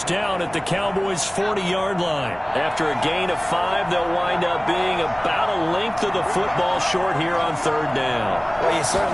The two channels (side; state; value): right; noise; hum, 26 dB below the sound